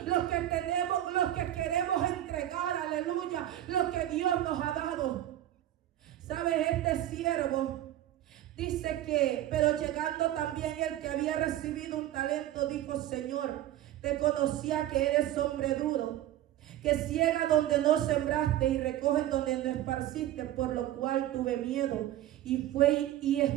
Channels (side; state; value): left; quieter; 13.2 dB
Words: los que tenemos, los que queremos entregar, aleluya, los que Dios nos ha dado. ¿Sabes? Este siervo dice que, pero llegando también el que había recibido un talento, dijo: Señor, te conocía que eres hombre duro, que ciega donde no sembraste y recoges donde no esparciste, por lo cual tuve miedo y fue y